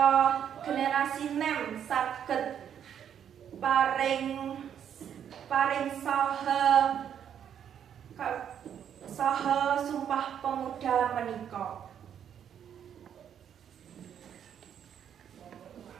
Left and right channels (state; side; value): quieter; left; 8.9 dB